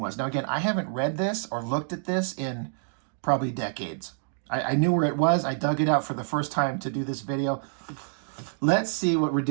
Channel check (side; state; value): left; silent; digital silence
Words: was. Now again, I haven't read this or looked at this in probably decades. I knew where it was. I dug it out for the first time to do this video. Let's see what